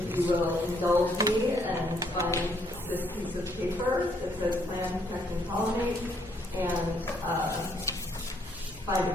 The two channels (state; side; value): normal; both; correlation 0.69